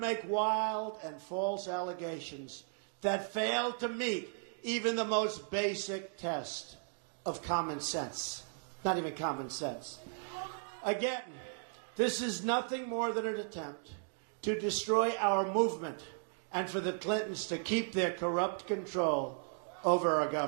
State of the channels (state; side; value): silent; left; 54 dB below the other